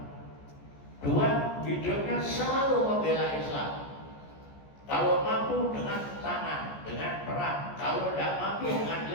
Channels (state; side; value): late; right; 14 ms